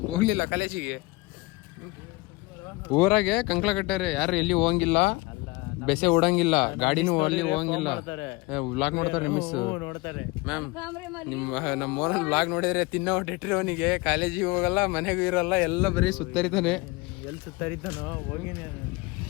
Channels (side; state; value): right; quieter; 23.2 dB